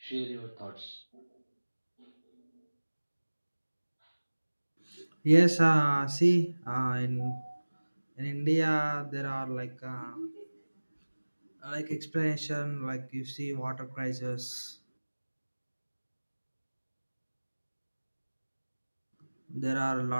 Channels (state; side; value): inverted; both; correlation -1.00